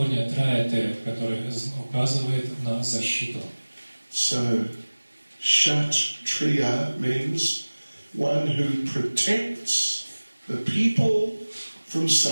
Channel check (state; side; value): inverted; both; correlation -1.00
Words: «траете», который указывает на защиту. So, Shat Triya means one who protects the people from